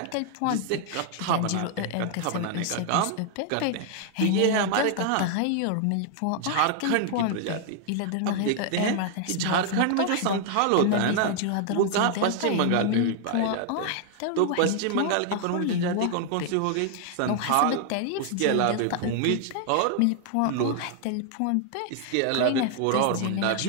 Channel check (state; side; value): different; both; correlation 0.00